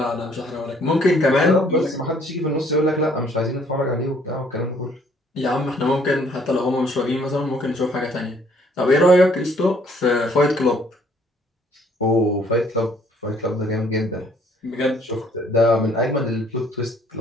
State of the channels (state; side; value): normal; both; correlation 0.62